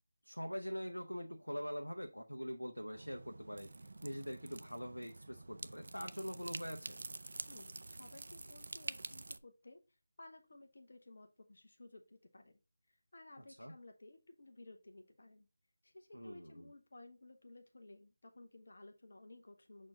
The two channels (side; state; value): both; inverted; correlation -0.98